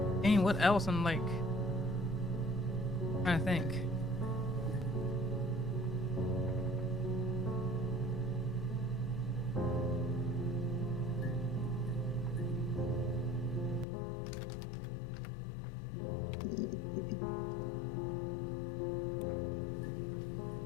I mean, what else? I'm like trying to think.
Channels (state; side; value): drops out; right; at 13.9 s